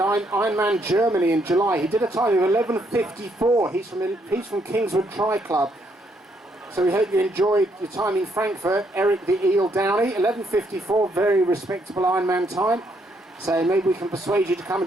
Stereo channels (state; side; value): normal; both; correlation 0.73